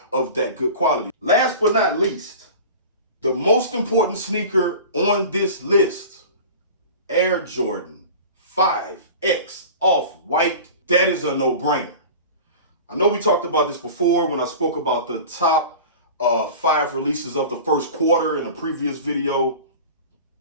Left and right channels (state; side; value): inverted; both; correlation -0.37